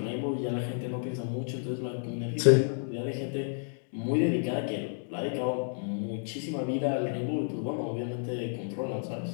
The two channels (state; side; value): silent; right; digital silence